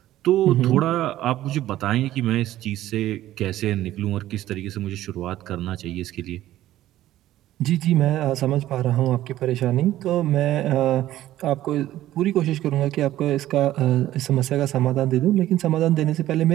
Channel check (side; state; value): left; quieter; 14.0 dB